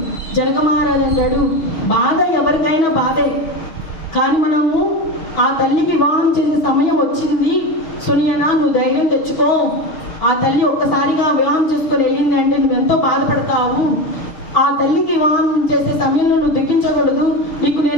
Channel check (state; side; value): late; right; 6.7 ms